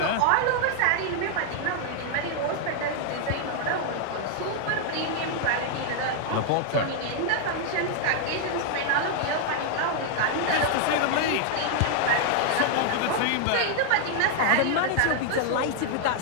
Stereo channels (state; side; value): different; both; correlation 0.00